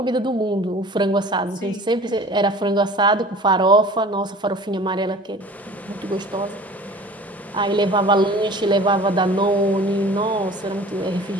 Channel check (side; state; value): both; normal; correlation 0.44